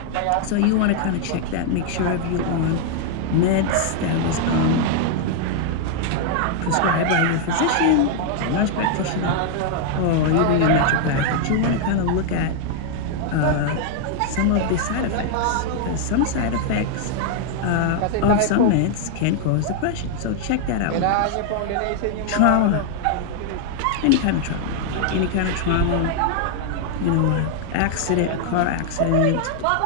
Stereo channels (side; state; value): both; different; correlation 0.00